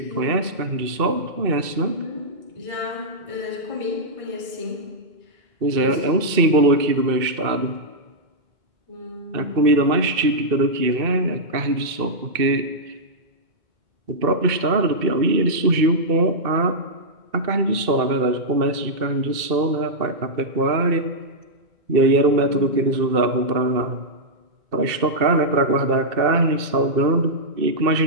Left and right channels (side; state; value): left; late; 2.6 ms